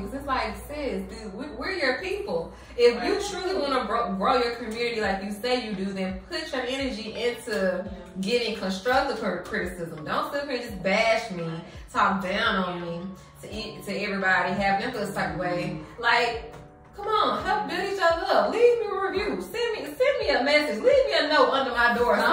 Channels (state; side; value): identical; both; correlation 1.00